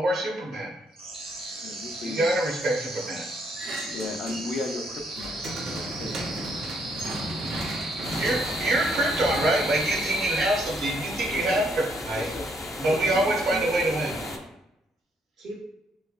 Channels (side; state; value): both; normal; correlation 0.71